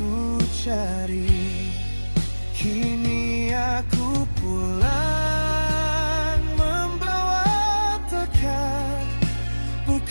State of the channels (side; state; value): both; inverted; correlation -1.00